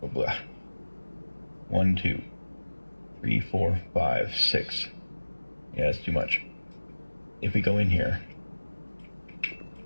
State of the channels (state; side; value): inverted; both; correlation -1.00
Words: Oh, blah. 1, 2, 3, 4, 5, 6. Yeah, that's too much. If we go in here